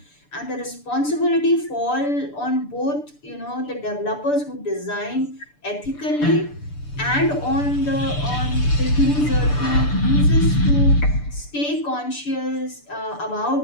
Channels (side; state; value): right; late; 6.8 ms